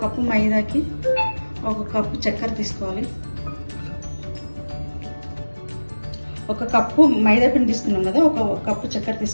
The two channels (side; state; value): both; inverted; correlation -1.00